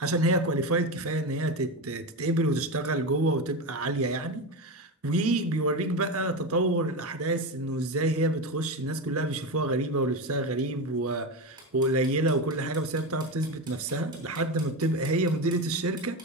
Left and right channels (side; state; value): both; normal; correlation 0.18